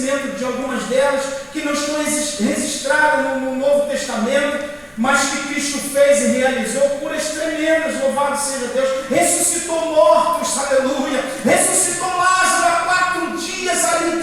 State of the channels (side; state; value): both; identical; correlation 1.00